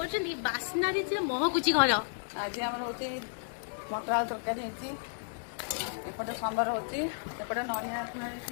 ବାସ୍ନାରେ ଯେ ମହକୁଛି ଘର। ଆଜି ଆମର ହଉଛି ମଟର ଆଳୁ ତରକାରୀ ହେଇଛି, ଏପଟେ ସମ୍ବର ହଉଛି, ଏପଟେ ନଡ଼ିଆ ପୁରା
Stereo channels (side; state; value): right; silent; digital silence